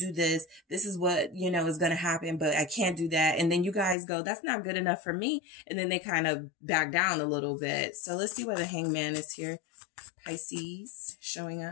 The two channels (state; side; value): drops out; right; at 4.0 s